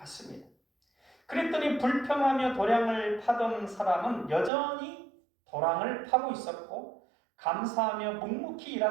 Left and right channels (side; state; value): left; drops out; at 4.5 s